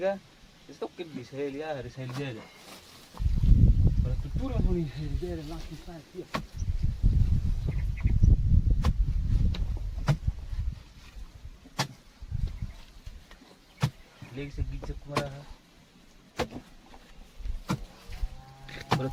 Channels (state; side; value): identical; both; correlation 1.00